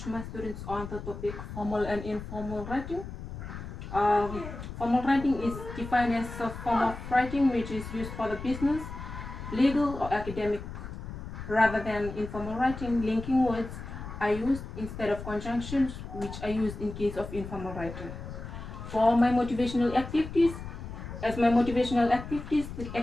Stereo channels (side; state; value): left; noise; rumble, 10 dB below the sound